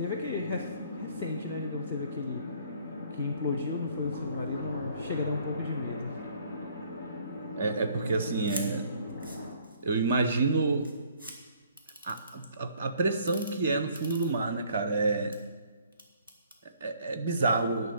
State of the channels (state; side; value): inverted; both; correlation -0.60